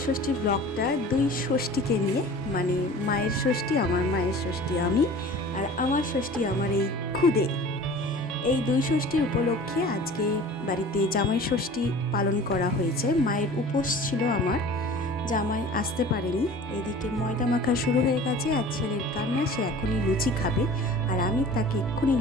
ষষ্ঠী ব্লগটা দুই ষষ্ঠীকে নিয়ে, মানে মায়ের ষষ্ঠী, আমার মায়ের ষষ্ঠী আমি, আর আমার ষষ্ঠী আমার এই খুদে। এই দুই ষষ্ঠীর উপলক্ষে আজকে বাড়িতে জামাই ষষ্ঠী পালন করা হয়েছে। মায়ের উপোস ছিল আমার, জামাই আসতে পারেনি। এদিকে ময়দা মাখা শুরু হয়ে গেছে, আর ছেলের কান্না, সে এখনই লুচি খাবে, আর আমি তাকে এক্ষুনি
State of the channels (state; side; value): normal; both; correlation 0.42